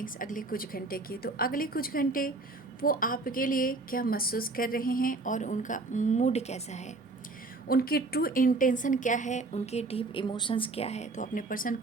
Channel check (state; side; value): quieter; left; 3.4 dB